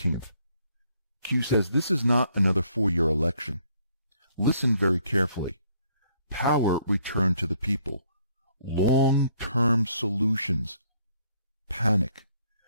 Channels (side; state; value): both; inverted; correlation -0.67